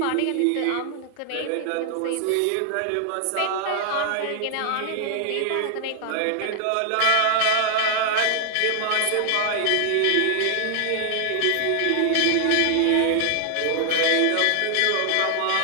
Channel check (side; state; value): both; different; correlation 0.00